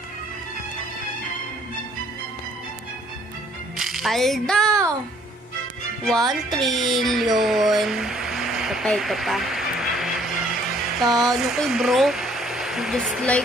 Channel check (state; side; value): normal; both; correlation 0.61